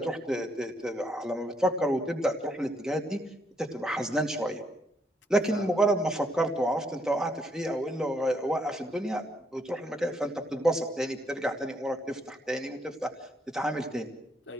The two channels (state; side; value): normal; both; correlation 0.73